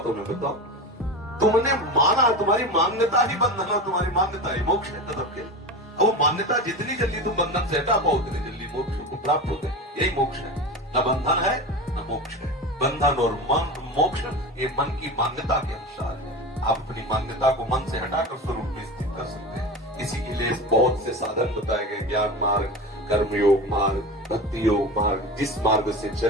मैं बताओ। तुमने माना, तुम्हारी मान्यता ही बंधन है, तुम्हारी मान्यता ही मोक्ष है। तब के वो मान्यता जितनी जल्दी तुम बंधन से हटा पाओ उतनी जल्दी मोक्ष को प्राप्त होते हैं। यही मोक्ष है। न बंधन है न मोक्ष है। बंधन और मोक्ष ये मन की मान्यता के अनुसार है। आप अपनी मान्यता को मन से हटाकर स्वरूप में स्थित कर सकते हैं। इसी के लिए बहुत से साधन बताए गए, ज्ञान मार्ग, कर्म योग मार्ग, भक्ति योग मार्ग। जिस मार्ग से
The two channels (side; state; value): both; normal; correlation 0.27